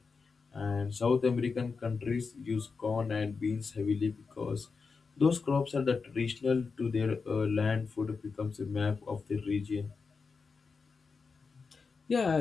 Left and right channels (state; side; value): quieter; right; 4.9 dB